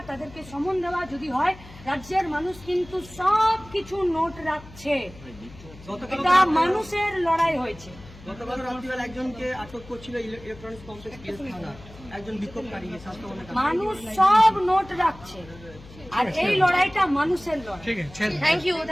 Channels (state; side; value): noise; left; hum, 19 dB below the sound